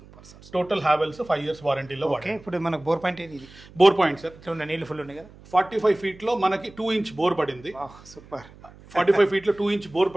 టోటల్ హావెల్స్ 5 years వారంటీలో వాడాను. ఇప్పుడు మనకు బోర్ పాయింట్ సార్ నీళ్ళు ఫుల్ ఉన్నాయి కదా. 45 feet మనకి 2 inch బోర్ పడింది. సూపర్. 45 feet 2 inch బోర్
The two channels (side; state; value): right; noise; hum, 22 dB below the sound